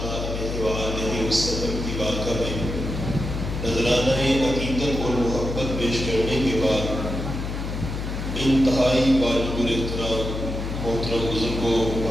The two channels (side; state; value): left; noise; hum, 5 dB below the sound